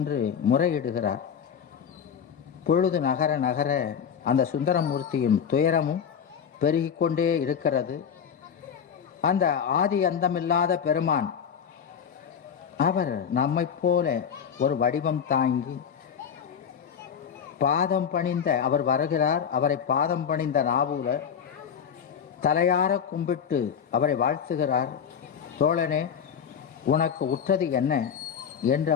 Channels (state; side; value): quieter; right; 7.6 dB